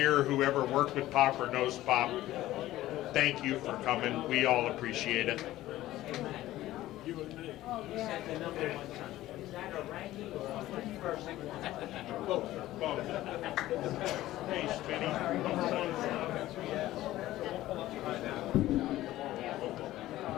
whoever worked with Pop or knows Pop, thank you for coming. We all appreciate it. Both. Hey, Spinny.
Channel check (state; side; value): quieter; right; 15.4 dB